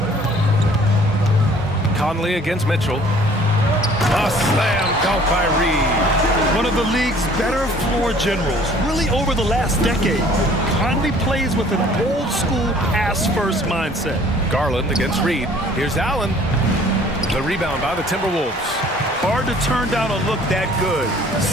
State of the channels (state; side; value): normal; both; correlation 0.54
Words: Conley against Mitchell. A slam dunk by Reed. One of the league's better floor generals, really over the last decade. Conley plays with an old-school pass-first mindset. Garland against Reed. Here's Allen. The rebound by the Timberwolves. Hard to turn down a look that good.